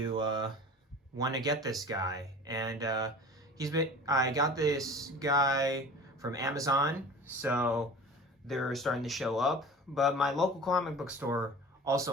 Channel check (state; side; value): normal; both; correlation 0.39